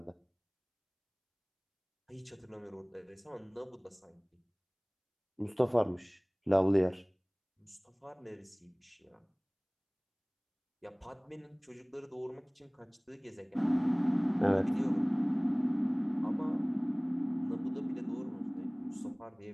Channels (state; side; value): identical; both; correlation 1.00